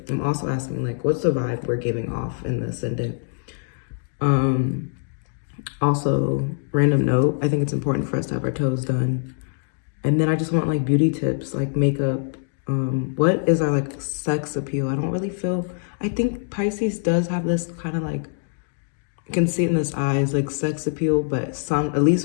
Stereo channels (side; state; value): right; silent; digital silence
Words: I'm also asking like, what's the vibe we're giving off in the ascendant? Also, random note, I think it's important for us to have our toes done. And then I just want like beauty tips, like makeup. What is our like sex appeal? I don't really feel, I think Pisces does have this kind of like I can see it in his eyes, like sex appeal, but at